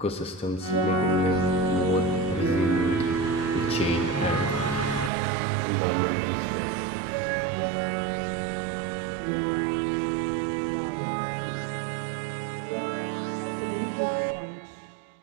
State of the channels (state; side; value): drops out; left; at 5.1 s